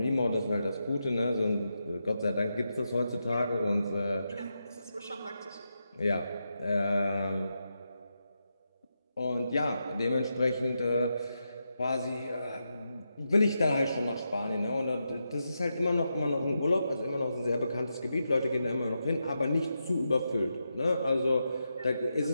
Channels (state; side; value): inverted; both; correlation -0.86